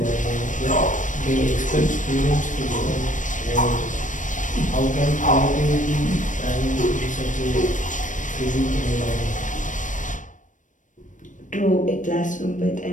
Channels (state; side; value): late; right; 0.37 ms